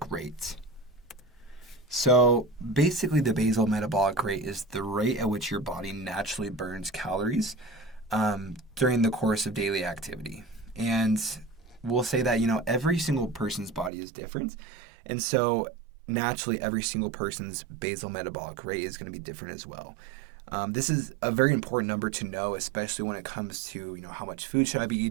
rate. So, basically, the basal metabolic rate is the rate at which your body naturally burns calories during the course of daily activity. And we'll say that, every single person's body is different. And so, naturally, every single person's basal metabolic rate is going to be different as well. This is a very important number to know, especially when it comes to, how much food should I be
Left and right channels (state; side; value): drops out; left; at 13.9 s